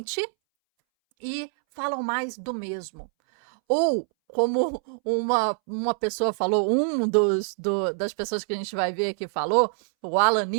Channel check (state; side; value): silent; left; 62 dB below the other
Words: e falam mais do mesmo. Ou, como uma pessoa falou, das pessoas que a gente vai ver aqui falou, o Alan